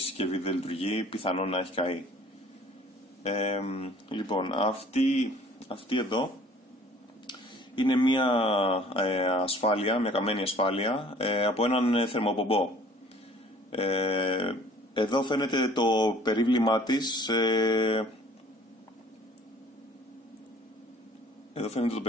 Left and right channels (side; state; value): both; normal; correlation 0.52